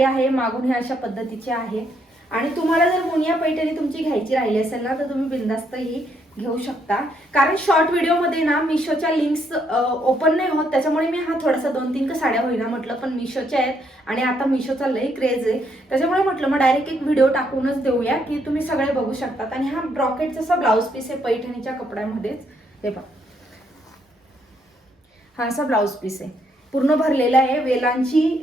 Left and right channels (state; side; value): normal; both; correlation 0.73